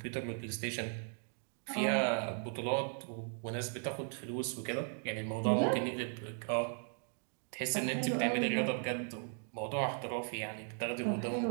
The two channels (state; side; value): silent; left; 53 dB below the other